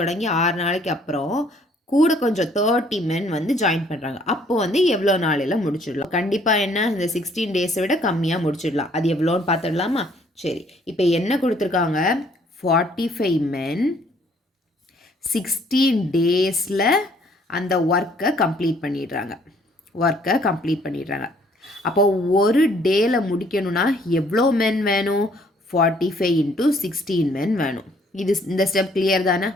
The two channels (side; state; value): both; normal; correlation 0.62